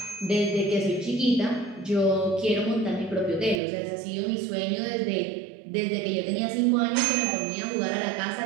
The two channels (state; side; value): drops out; left; at 3.6 s